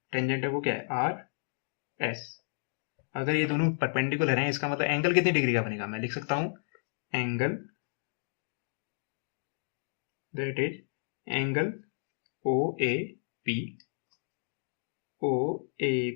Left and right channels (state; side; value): silent; right; digital silence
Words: टेंजेंट है वो क्या है, आर एस। अगर ये दोनों परपेंडिकुलर हैं, इसका मतलब एंगल कितनी डिग्री का बनेगा, मैं लिख सकता हूं angle that is angle O A P, O A